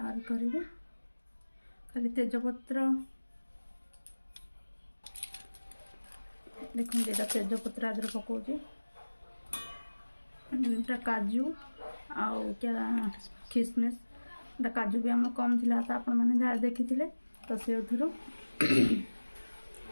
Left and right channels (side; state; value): both; inverted; correlation -1.00